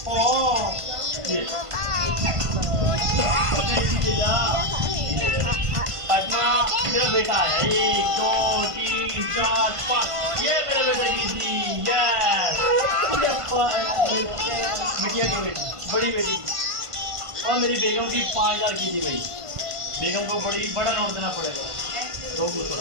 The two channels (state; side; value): late; left; 1.5 ms